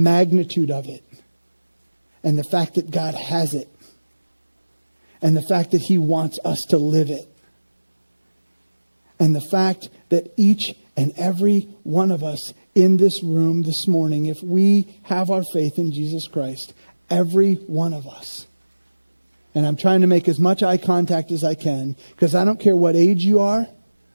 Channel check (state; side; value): inverted; both; correlation -1.00